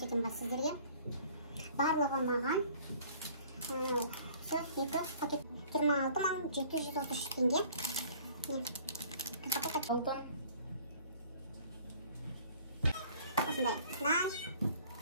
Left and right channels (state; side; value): inverted; both; correlation -0.52